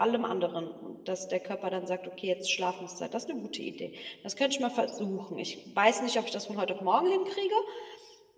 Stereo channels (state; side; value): identical; both; correlation 1.00